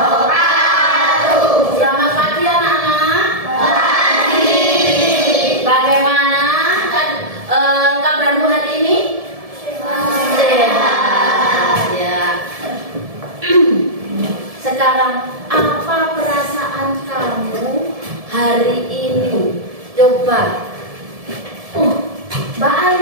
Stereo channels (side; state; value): left; late; 1.7 ms